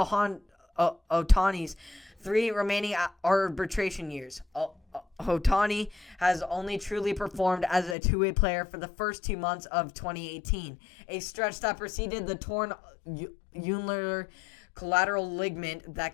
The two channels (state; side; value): drops out; right; at 8.0 s